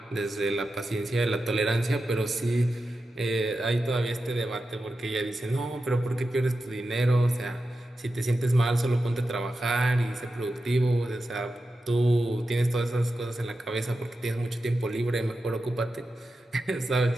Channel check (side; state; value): both; normal; correlation 0.90